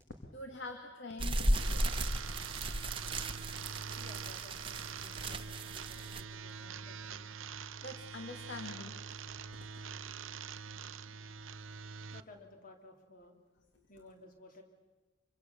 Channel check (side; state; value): both; normal; correlation 0.69